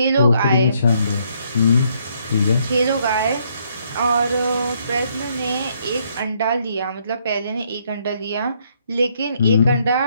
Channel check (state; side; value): inverted; both; correlation -0.70